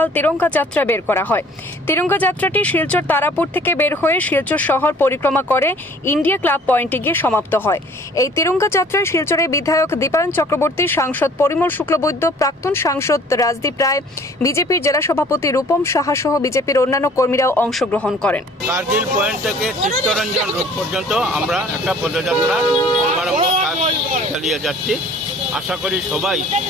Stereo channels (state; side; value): normal; both; correlation 0.53